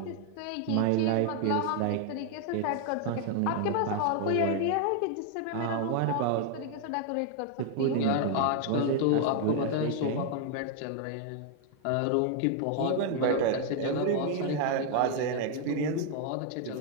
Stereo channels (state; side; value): different; both; correlation 0.00